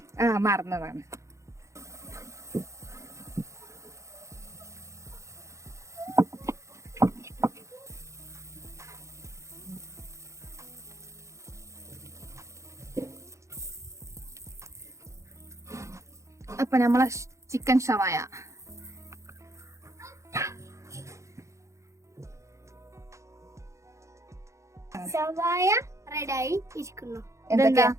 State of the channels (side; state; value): left; late; 0.14 ms